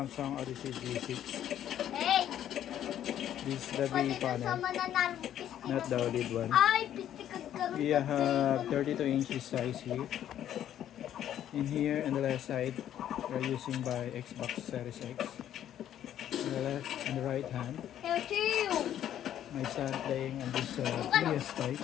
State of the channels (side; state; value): right; quieter; 11.0 dB